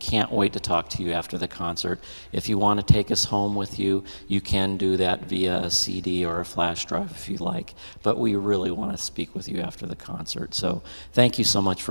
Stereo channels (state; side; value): inverted; both; correlation -1.00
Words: wait to talk to you after the concert. If you want to take us home with you, you can do that via a CD or a flash drive if you like. But we really want to speak with you after the concert. So thank you so much